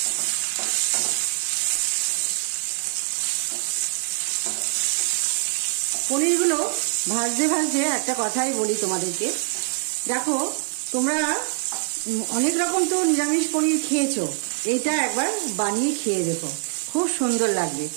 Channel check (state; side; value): silent; left; digital silence